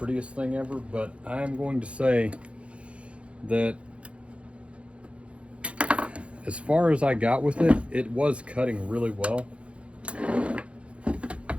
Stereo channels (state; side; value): late; left; 0.061 ms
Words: thing ever, but I'm going to say that as far as I got with it, it was cutting really well.